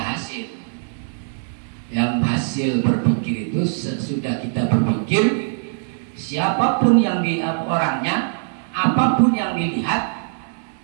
hasil. Yang hasil berpikir itu sesudah kita berpikir, siapapun yang di orangnya, apapun yang dilihat,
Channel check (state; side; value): silent; left; 65 dB below the other